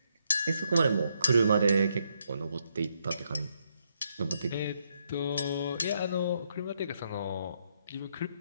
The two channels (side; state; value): both; inverted; correlation -0.76